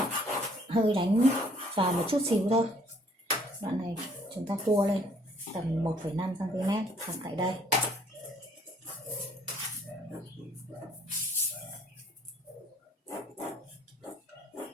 hơi đánh vào một chút xíu thôi. Đoạn này chúng ta cua lên tầm 1,5 cm khoảng tại đây.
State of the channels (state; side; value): normal; both; correlation 0.61